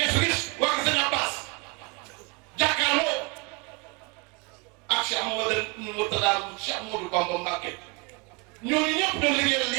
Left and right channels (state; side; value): quieter; left; 30.4 dB